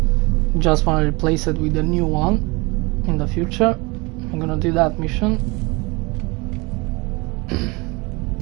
Just want to replace it with a new one in the future. I'm gonna do that mission.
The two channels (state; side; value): quieter; left; 26.3 dB